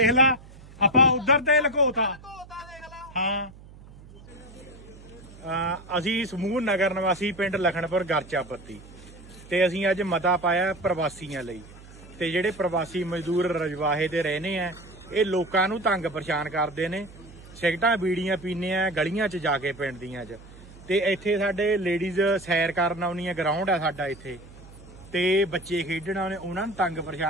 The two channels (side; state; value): right; noise; hum, 19 dB below the sound